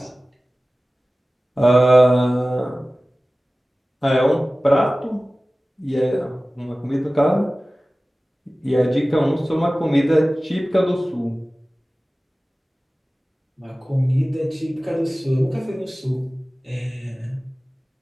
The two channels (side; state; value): both; normal; correlation 0.97